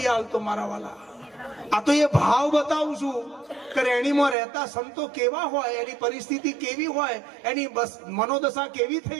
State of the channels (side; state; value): left; drops out; at 4.4 s